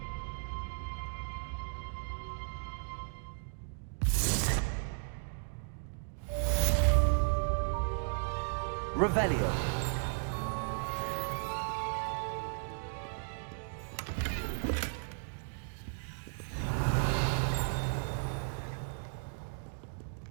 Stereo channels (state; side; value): silent; left; digital silence